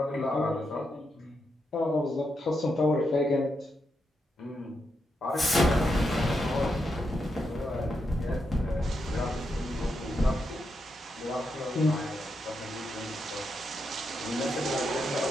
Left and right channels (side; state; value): both; normal; correlation 0.83